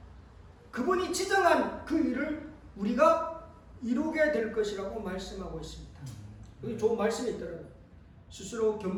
그분이 지정한 그 일을 우리가 이루게 될 것이라고 말씀하고 있습니다. 여기 좋은 말씀이 있더라고요. 스스로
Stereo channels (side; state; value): both; identical; correlation 1.00